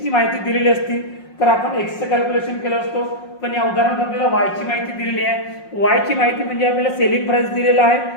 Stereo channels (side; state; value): right; late; 5.5 ms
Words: माहिती दिलेली असती तर आपण एक्सचं कॅल्क्युलेशन केलं असतो. पण या उदाहरणात आपल्याला वायची माहिती दिलेली आहे. वायची माहिती म्हणजे आपल्याला सेलिंग प्राइस दिलेला आहे